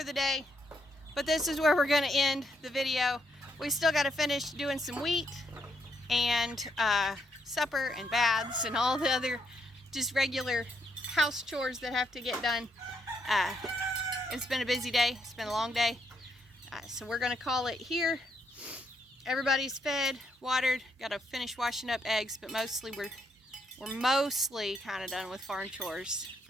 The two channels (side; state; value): both; normal; correlation 0.76